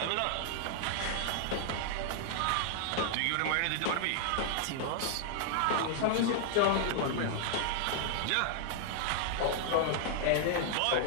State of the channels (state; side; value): different; both; correlation 0.00